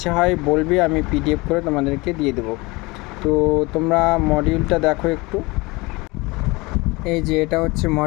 হয় বলবে, আমি পিডিএফ করে তোমাদেরকে দিয়ে দেব। তো তোমরা মডিউলটা দেখো একটু। এই যে এটা হচ্ছে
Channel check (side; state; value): right; quieter; 23.9 dB